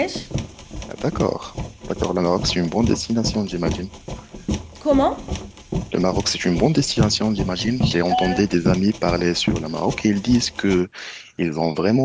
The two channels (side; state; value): both; identical; correlation 1.00